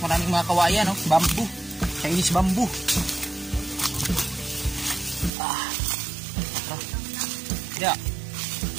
Maraming mga kawayan, no? Bambu. Chinese bambu. Ya.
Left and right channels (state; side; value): drops out; left; at 5.3 s